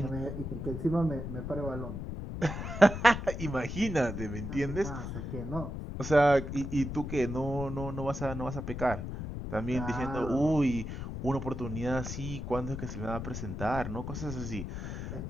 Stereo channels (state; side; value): noise; left; rumble, 6 dB below the sound